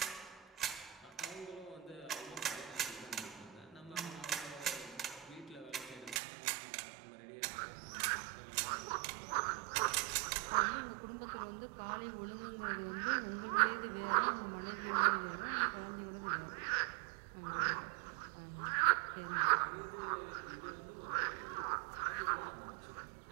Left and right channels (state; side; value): drops out; left; at 6.2 s